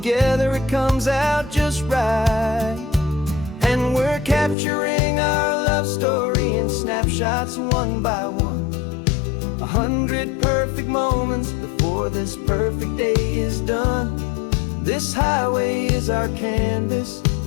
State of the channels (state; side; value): drops out; right; at 4.5 s